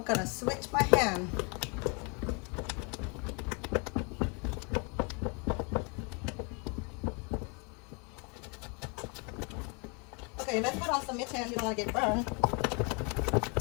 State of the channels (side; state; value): right; quieter; 34.0 dB